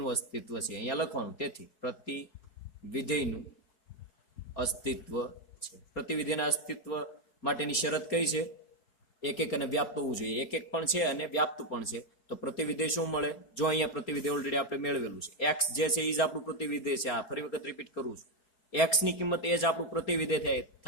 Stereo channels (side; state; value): right; late; 4.3 ms